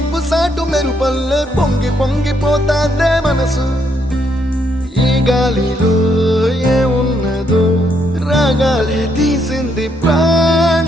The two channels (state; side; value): normal; both; correlation 0.74